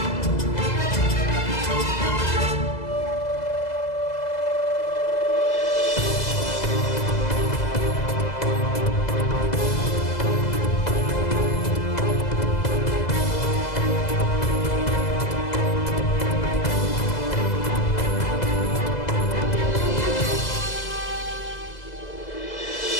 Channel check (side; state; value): right; late; 2.0 ms